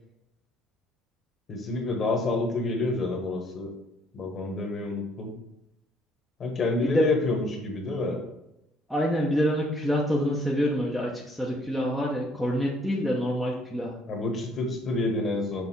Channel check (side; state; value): both; normal; correlation 0.64